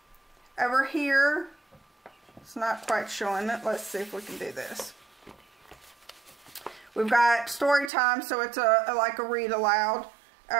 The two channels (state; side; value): drops out; left; at 7.9 s